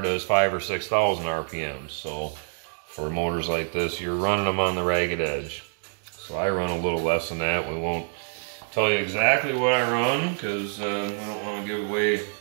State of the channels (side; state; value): left; silent; digital silence